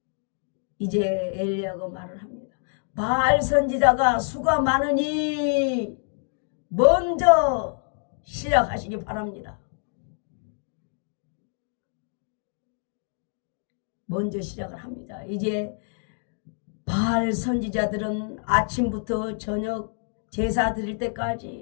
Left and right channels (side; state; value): right; silent; 61 dB below the other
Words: 이제 엘리야가 말을 합니다. 바알 선지자가 수가 많으니 먼저 시작하시기 바랍니다. 먼저 시작을 합니다. 이제 바알 선지자들은 아침부터 저녁 제사 드릴